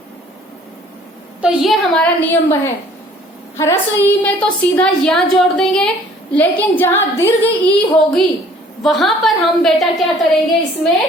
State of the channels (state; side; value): normal; both; correlation 0.55